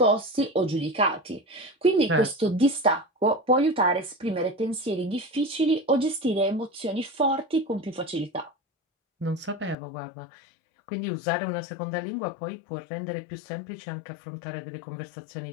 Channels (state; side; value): drops out; right; at 9.8 s